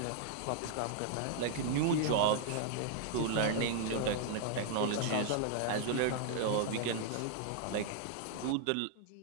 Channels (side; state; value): both; different; correlation 0.00